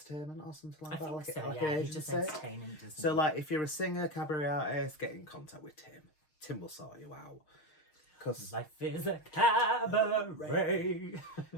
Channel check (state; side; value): late; right; 6.5 ms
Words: or something like that? I think Like, so, like yeah. an He's just agency? entertaining, doesn't So he? like if you're a singer, cabaret artist, get in contact with Tim. Tim will sort you out. Because Life is a cabaret.